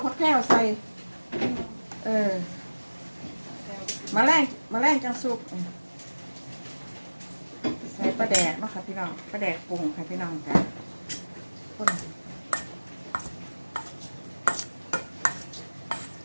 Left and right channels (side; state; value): both; inverted; correlation -1.00